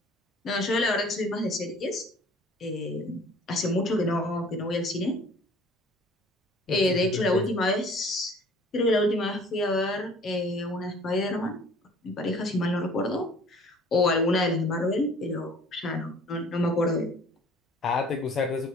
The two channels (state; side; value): normal; both; correlation 0.51